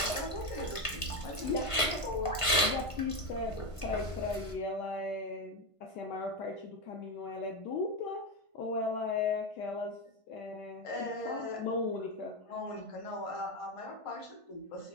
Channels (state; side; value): late; right; 1.5 ms